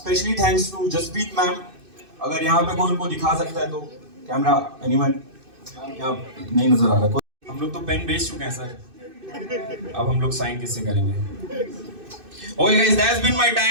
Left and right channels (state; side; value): late; left; 2.6 ms